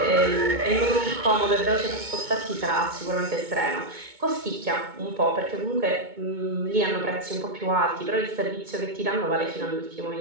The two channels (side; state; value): left; late; 2.2 ms